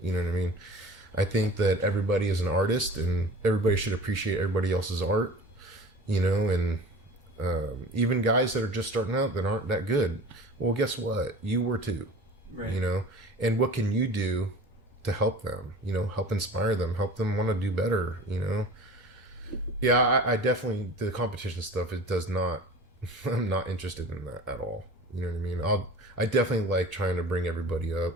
You know what I mean? I think that everybody is an artist, and everybody should appreciate everybody else's art, you know, and even guys that are just starting out that aren't that good. Well, guess what? You were too, right. You know? And what can you do to help them, you know, help inspire them, help them want to do better, you know? Yeah, I definitely, the competition stuff, it does not, I'm not interested in that at all. You know what I mean? I definitely like trying to bring everybody up,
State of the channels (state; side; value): normal; both; correlation 0.39